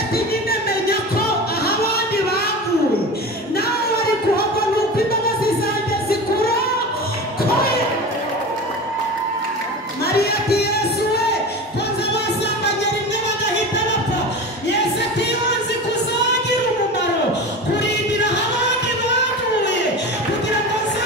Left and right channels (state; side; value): normal; both; correlation 0.30